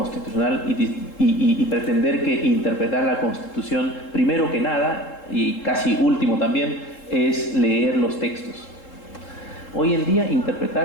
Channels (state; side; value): late; right; 3.7 ms